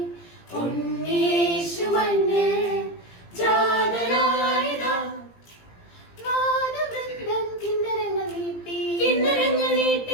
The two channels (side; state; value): right; late; 17 ms